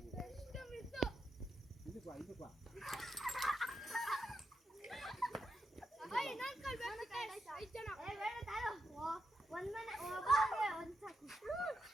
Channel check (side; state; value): both; normal; correlation 0.84